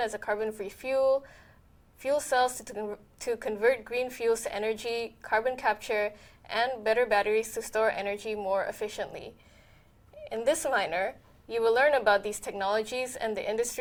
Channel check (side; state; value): both; identical; correlation 1.00